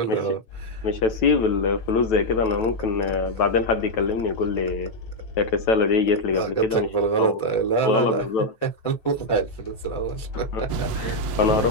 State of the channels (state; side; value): late; right; 8.2 ms